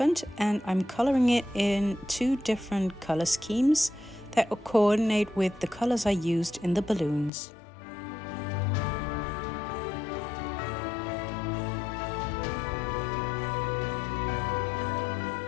and I'm coloring it in 2 different color schemes that will coordinate with the colors I used in the balloons.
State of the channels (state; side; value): drops out; right; at 7.3 s